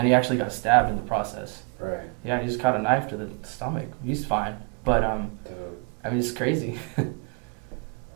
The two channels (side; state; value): left; quieter; 35.8 dB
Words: he actually got stabbed in the process. Right. Yeah, he just caught a knife to the stomach. He's fine, but Dude. I mean, it's crazy.